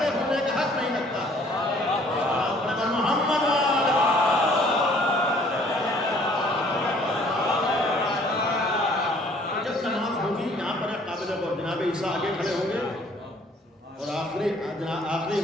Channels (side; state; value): both; normal; correlation 0.58